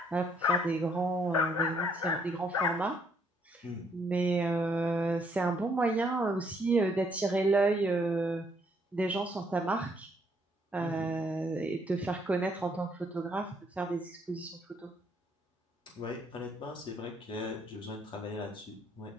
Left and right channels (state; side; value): normal; both; correlation 0.69